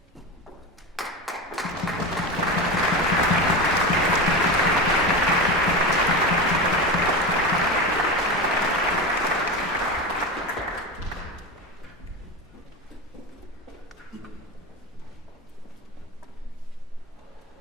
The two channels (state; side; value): normal; both; correlation 0.22